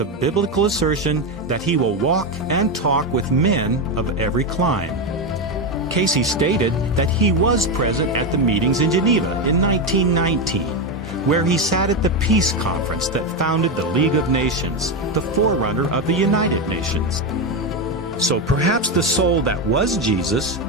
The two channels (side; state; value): both; normal; correlation 0.11